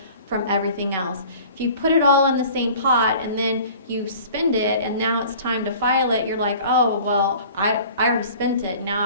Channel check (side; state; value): both; inverted; correlation -0.46